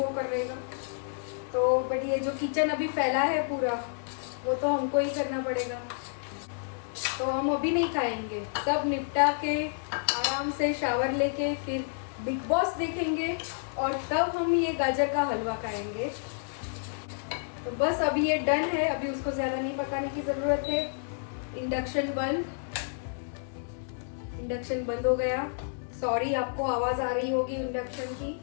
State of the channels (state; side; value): silent; right; digital silence